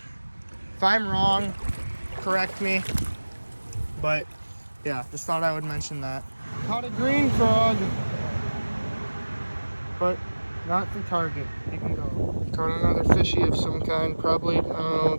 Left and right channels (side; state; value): both; inverted; correlation -1.00